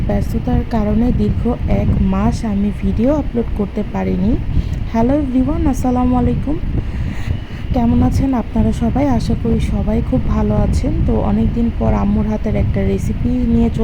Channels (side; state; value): both; identical; correlation 1.00